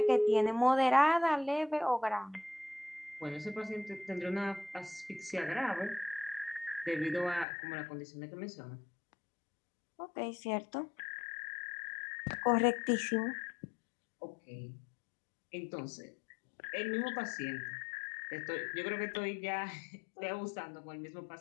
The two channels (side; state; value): right; drops out; at 7.5 s